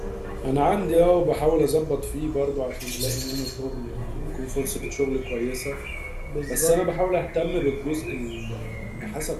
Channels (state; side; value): identical; both; correlation 1.00